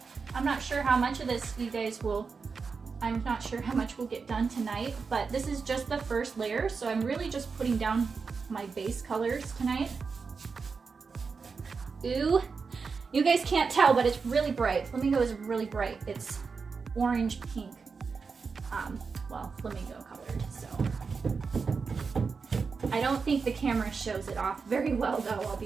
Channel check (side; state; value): left; quieter; 5.1 dB